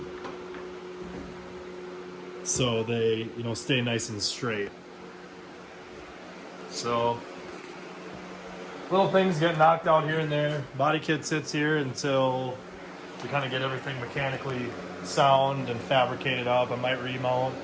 So they, you know, stay nice and straight. So little things get knocked out here and there. Body kit sits here until we kind of get everything mechanically sound and fabricated up. I might remount.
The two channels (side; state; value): both; identical; correlation 1.00